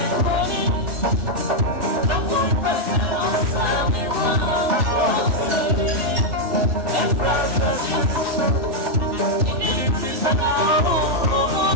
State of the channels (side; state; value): left; late; 3.4 ms